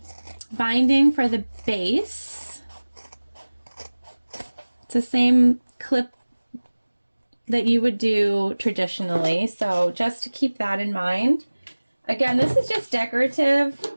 binding for the base. It's the same clip that you would do traditionally, so just to keep that in mind. Again, this is just decorative.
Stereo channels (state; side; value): inverted; both; correlation -1.00